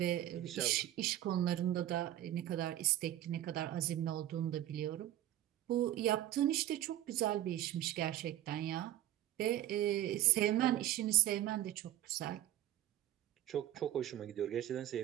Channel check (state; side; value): quieter; left; 13.1 dB